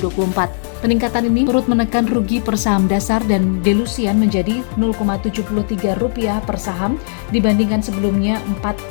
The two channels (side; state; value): right; silent; digital silence